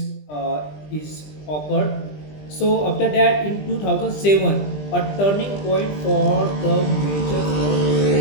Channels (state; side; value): late; right; 20 ms